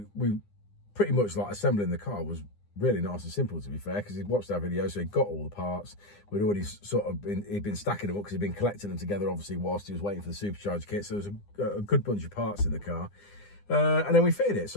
we pretty much like assembling the car was really nice and simple, to be fair, because he'd watched our video, so he got all the parts. We'd already sort of he'd been stacking them up because he'd been collecting them together, obviously, whilst he was waiting for the supercharger kit. So there was a good bunch of parts in the car. And then we fitted it,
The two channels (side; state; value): right; late; 9.8 ms